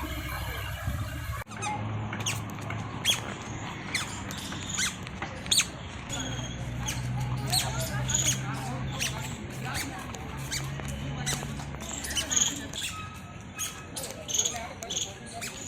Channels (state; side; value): identical; both; correlation 1.00